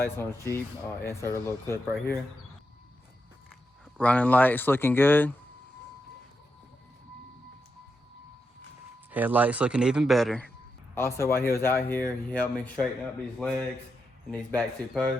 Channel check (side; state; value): both; normal; correlation 0.85